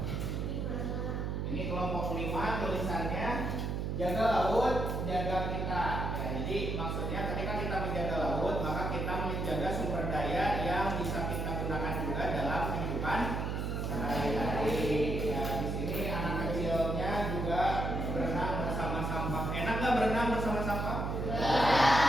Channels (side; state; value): right; noise; hum, 1 dB below the sound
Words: Ini kelompok 5, tulisannya jaga laut, jaga kita. Ya, jadi maksudnya ketika kita menjaga laut, maka kita menjaga sumber daya yang bisa kita gunakan juga dalam kehidupan sehari-hari. Ya, di sini anak kecilnya juga berenang bersama sampah. Enak nggak berenang bersama sampah?